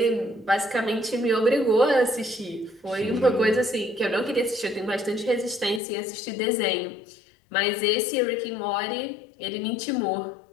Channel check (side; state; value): right; drops out; at 5.8 s